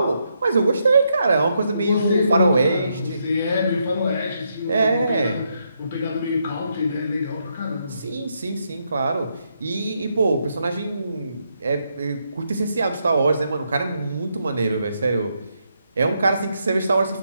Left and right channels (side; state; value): both; inverted; correlation -0.79